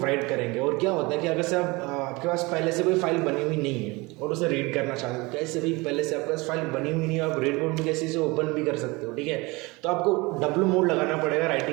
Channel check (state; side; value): quieter; left; 24.2 dB